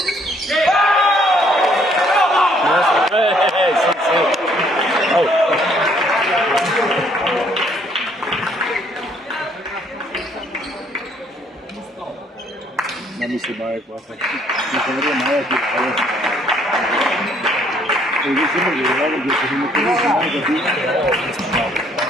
Oh. Non mi sembra qua, non saprei mai a tirare. E io sembra che guardavo che se mi conosco mai capito.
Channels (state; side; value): normal; both; correlation 0.65